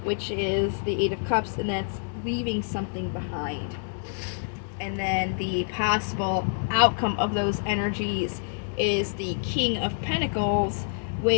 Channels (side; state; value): right; silent; digital silence